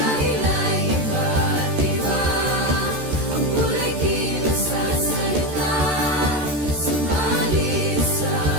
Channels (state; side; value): late; left; 13 ms